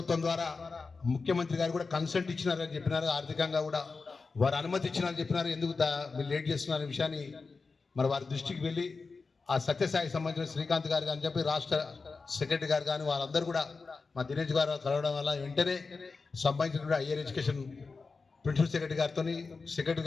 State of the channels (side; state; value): right; quieter; 4.3 dB